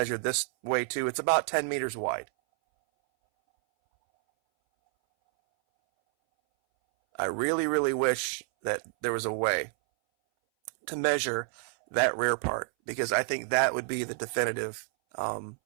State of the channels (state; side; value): silent; left; 59 dB below the other